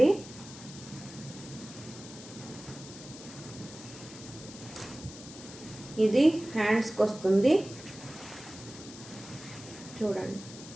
ఇది హ్యాండ్స్కి వస్తుంది చూడండి.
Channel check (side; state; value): left; noise; hiss, 15 dB below the sound